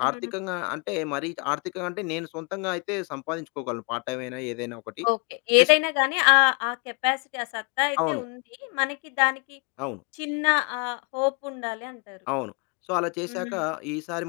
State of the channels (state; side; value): quieter; right; 36.0 dB